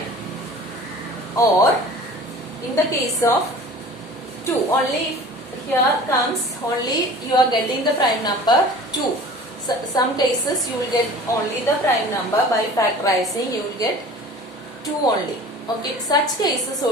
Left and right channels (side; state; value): both; normal; correlation 0.43